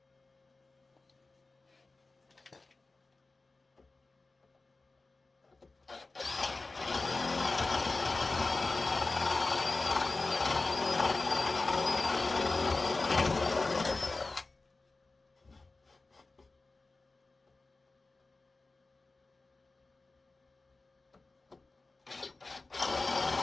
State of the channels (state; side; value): quieter; right; 3.5 dB